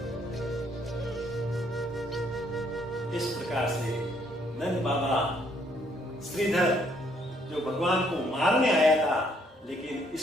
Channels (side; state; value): both; normal; correlation 0.68